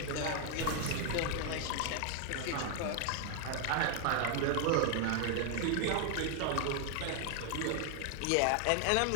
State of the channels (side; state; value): both; different; correlation 0.00